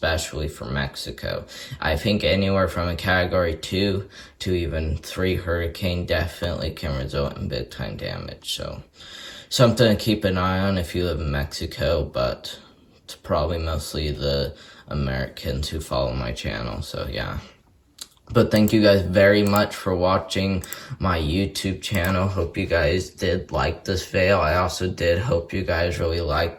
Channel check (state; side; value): identical; both; correlation 1.00